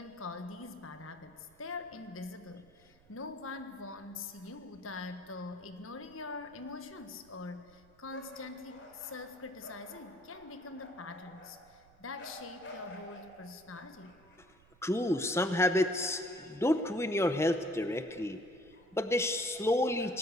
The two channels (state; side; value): noise; right; rumble, 28 dB below the sound